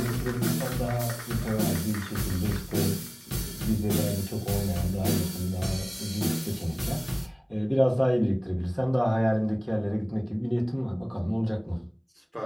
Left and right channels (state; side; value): identical; both; correlation 1.00